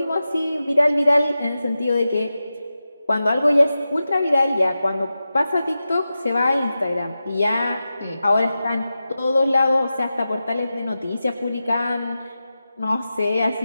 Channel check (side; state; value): both; inverted; correlation -0.93